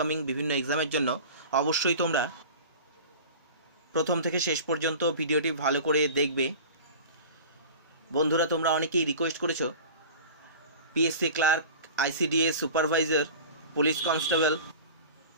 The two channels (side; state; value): both; inverted; correlation -0.38